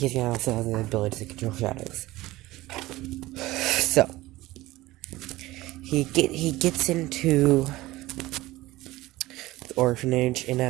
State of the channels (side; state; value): left; quieter; 18.2 dB